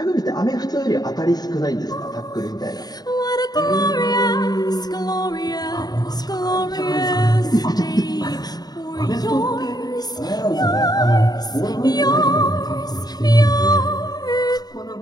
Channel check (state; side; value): late; right; 0.19 ms